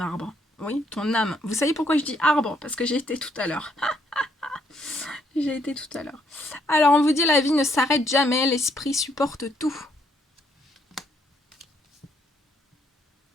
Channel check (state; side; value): normal; both; correlation 0.70